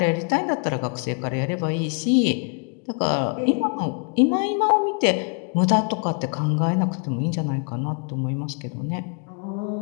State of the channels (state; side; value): quieter; right; 37.9 dB